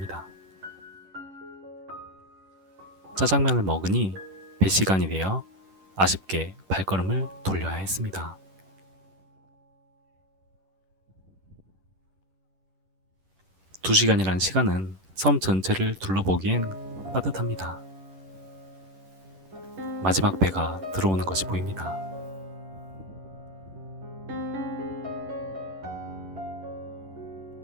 짜장면을 먹으니 배 시간이 되어 아쉽게 발걸음을 돌려야 했습니다. 두 시간이란 시간은 섬 전체를 둘러보기엔 빠듯합니다. 마지막 배가 들어오는 것이 보입니다.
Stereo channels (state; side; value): late; left; 10 ms